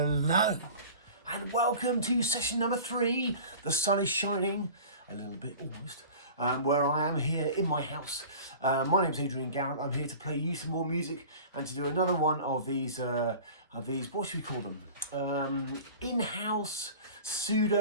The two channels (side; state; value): both; inverted; correlation -0.40